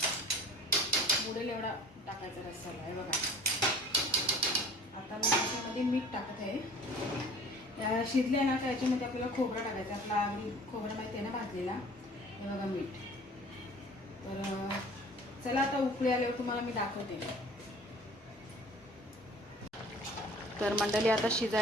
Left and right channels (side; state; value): both; normal; correlation 0.47